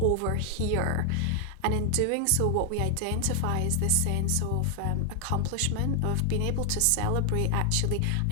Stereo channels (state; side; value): different; both; correlation 0.00